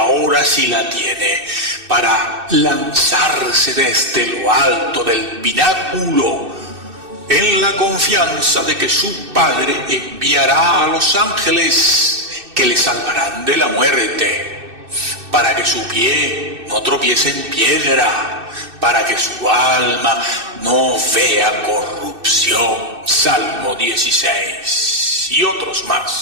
la tiene, para lanzarse desde lo alto del pináculo, en la confianza de que su Padre enviará a los ángeles que le salvarán de la muerte, para que su pie no tropiece en piedra, para que su alma no vea corrupción. Salmo 16 y otros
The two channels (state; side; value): late; left; 2.6 ms